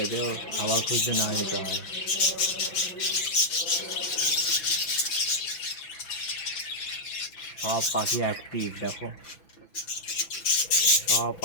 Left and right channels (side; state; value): right; late; 6.0 ms